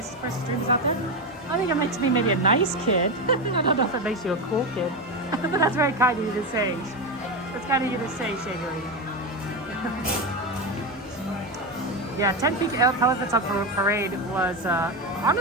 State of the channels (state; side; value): normal; both; correlation 0.14